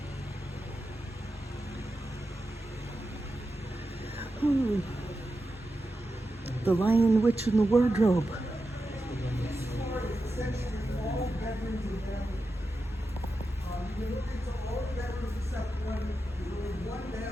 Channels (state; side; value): normal; both; correlation 0.90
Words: Hmm. The Lion, Witch, and the Wardrobe. Essentially all bedrooms in there. You can look into all the bedrooms except one. There's only one